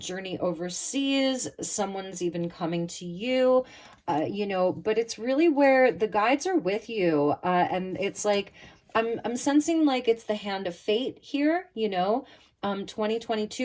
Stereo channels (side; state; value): both; identical; correlation 1.00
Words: overseas, someone's even coming to you, you know, but it's really where the guides are with you. And it's like, I'm sensing like it's the hand of fate here, you know,